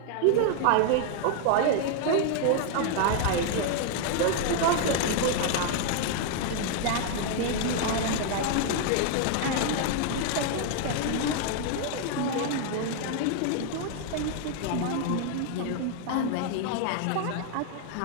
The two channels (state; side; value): different; both; correlation 0.00